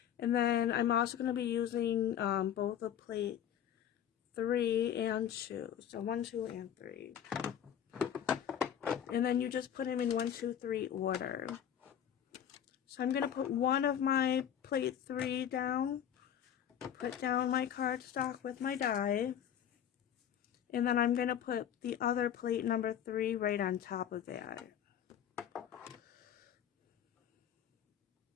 And then I'm also going to be using both of plate 3 and 2. So 1, 2, and 3. And then you just put them in 1, 2, 3 order. So I'm going to put one of my plate 3 down. Put down my cardstock with my die. And then I'm going to put the other plate number 3 right on top of that.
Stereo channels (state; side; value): quieter; right; 9.6 dB